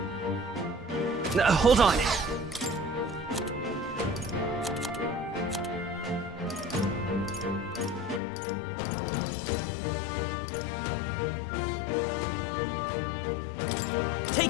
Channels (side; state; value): right; drops out; at 8.2 s